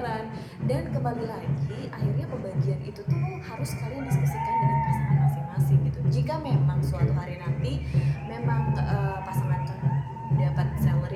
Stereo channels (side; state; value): both; identical; correlation 1.00